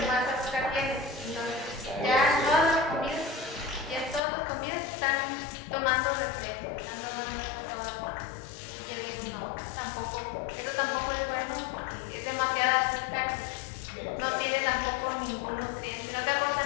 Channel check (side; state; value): right; drops out; at 4.2 s